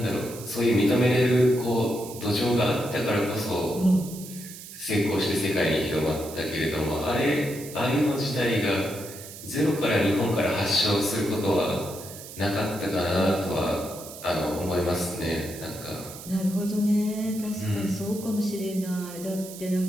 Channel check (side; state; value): right; noise; hiss, 14 dB below the sound